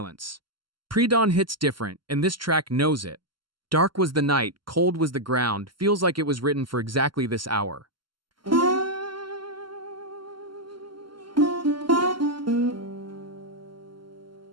Pre-dawn hits different, and this track knows it. Dark was the night, cold was the ground, feels like it was written for exactly this hour.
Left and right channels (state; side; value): late; left; 0.72 ms